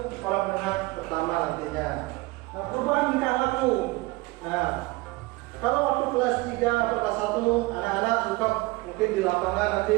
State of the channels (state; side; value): quieter; left; 22.2 dB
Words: sekolah menengah pertama nantinya. Nah perubahan tingkah laku. Nah kalau waktu kelas 3 atau kelas 1 anak-anak suka mungkin di lapangan nanti